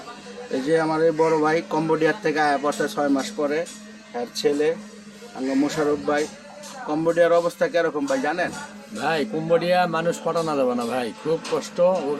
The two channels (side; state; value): both; identical; correlation 1.00